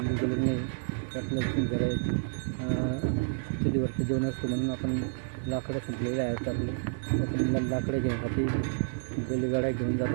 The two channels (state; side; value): silent; left; digital silence